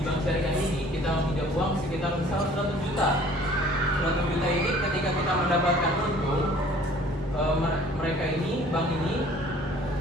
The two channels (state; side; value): normal; both; correlation 0.52